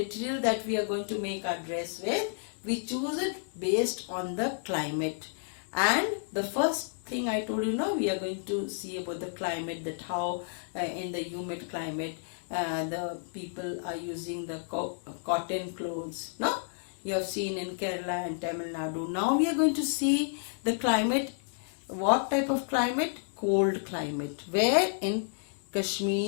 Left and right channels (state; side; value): silent; right; digital silence